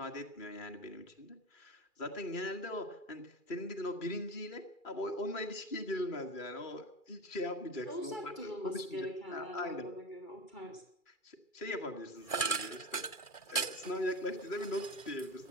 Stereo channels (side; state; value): right; late; 2.4 ms